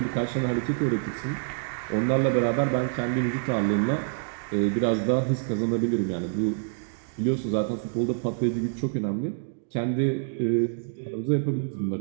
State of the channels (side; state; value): left; silent; digital silence